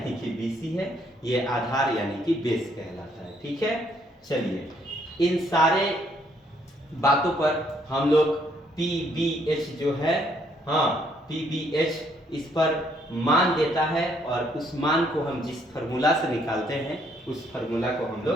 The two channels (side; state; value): both; normal; correlation 0.69